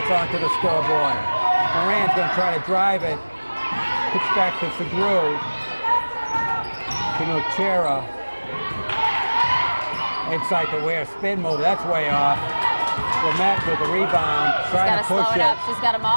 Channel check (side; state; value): both; inverted; correlation -1.00